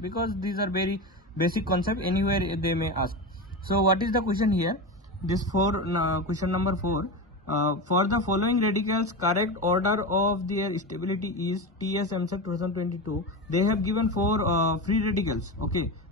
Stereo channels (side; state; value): both; normal; correlation 0.21